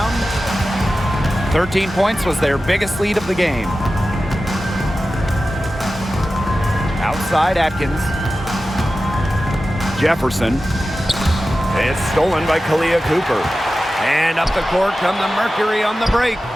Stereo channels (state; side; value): normal; both; correlation 0.94